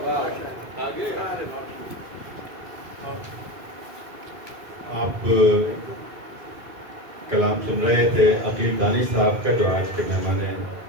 آپ کلام سن رہے تھے عقیل دانش صاحب کا, جو آج کے مہمان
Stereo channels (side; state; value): left; late; 2.7 ms